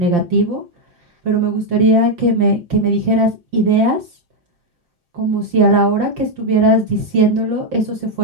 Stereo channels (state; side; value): late; left; 5.8 ms